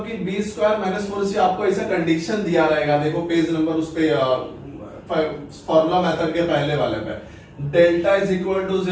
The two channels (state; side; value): identical; both; correlation 1.00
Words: कि बी स्क्वायर माइनस 4ac आपको ऐसा कंडीशन दिया रहेगा, देखो पेज नंबर उस पे फॉर्मूला मेथड के पहले वाले पे, delta is equal to